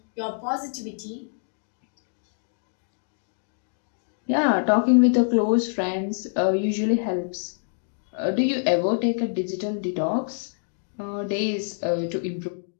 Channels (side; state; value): right; silent; digital silence